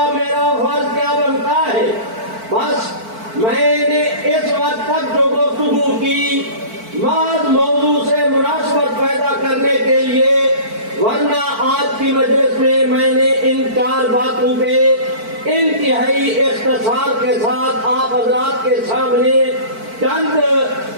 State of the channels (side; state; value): left; late; 4.5 ms